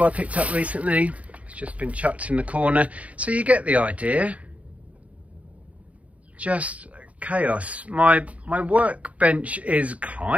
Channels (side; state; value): left; late; 0.068 ms